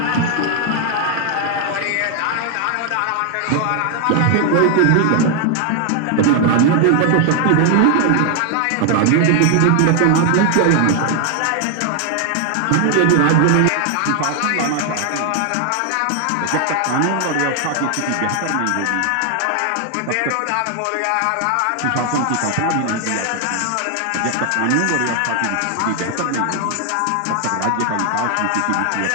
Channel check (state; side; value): different; both; correlation 0.00